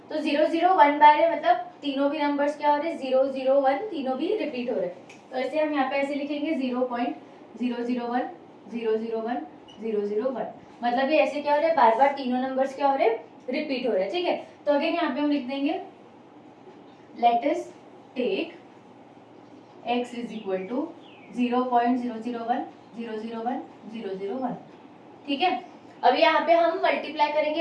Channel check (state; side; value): identical; both; correlation 1.00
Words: तो 001 बार है मतलब तीनों भी नंबर्स क्या हो रहे हैं 001, तीनों भी रिपीट हो रहे हैं। तो ऐसे हम यहाँ पे ऐसे लिखेंगे 0.001 001 001, मतलब ये ऐसे क्या हो रहा है, बार बार तीनों नंबर्स क्या हो रहे हैं रिपीट हो रहे हैं, ठीक है। तो अगेन यहाँ पे हम लिख देंगे let us take x is equal to 0.001 001 001, ठीक है। अभी यहाँ पे हम मल्टीप्लाई